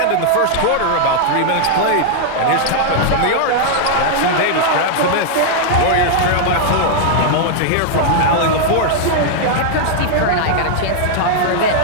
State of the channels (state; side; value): different; both; correlation -0.01